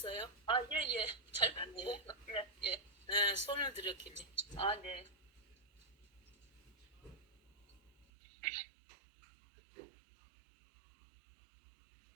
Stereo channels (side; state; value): left; drops out; at 8.1 s